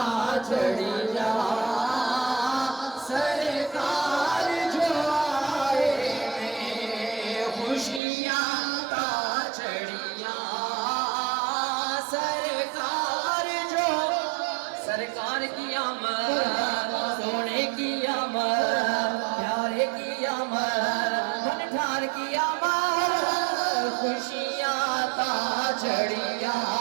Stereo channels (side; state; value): left; drops out; at 8.0 s